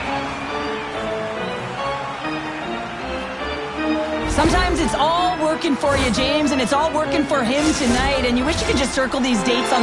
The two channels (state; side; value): identical; both; correlation 1.00